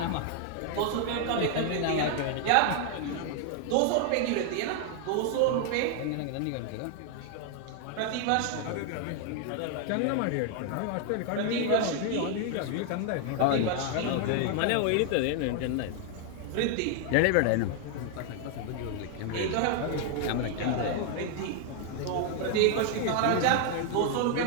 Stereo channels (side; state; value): both; different; correlation 0.00